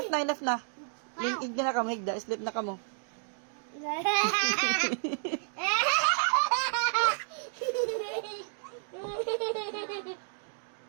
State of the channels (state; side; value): silent; left; digital silence